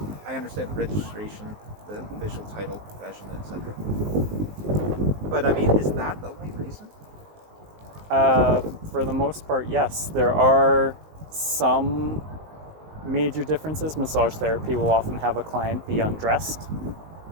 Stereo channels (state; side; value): late; left; 19 ms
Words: I understand the registration, the official title, profession, etc. But I mean, is that the only reason? For the most part, yes. There are some major differences. Massage therapy will often have a client be undressed,